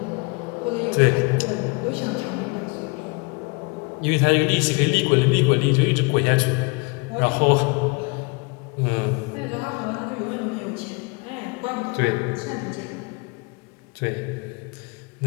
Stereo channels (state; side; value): quieter; right; 29.6 dB